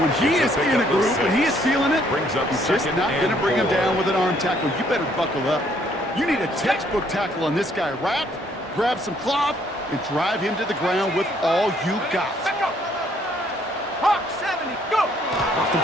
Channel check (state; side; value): normal; both; correlation 0.66